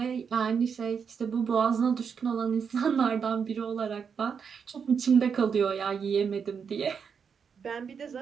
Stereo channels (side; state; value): left; quieter; 6.5 dB